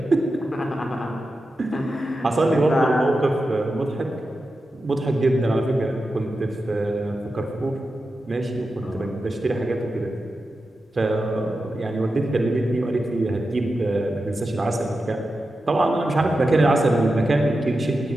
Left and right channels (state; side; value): normal; both; correlation 0.91